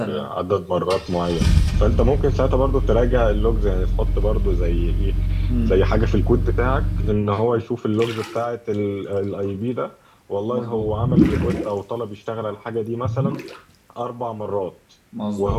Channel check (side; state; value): both; identical; correlation 1.00